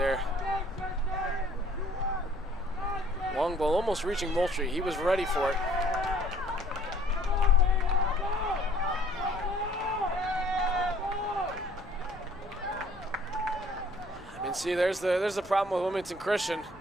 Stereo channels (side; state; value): both; normal; correlation 0.58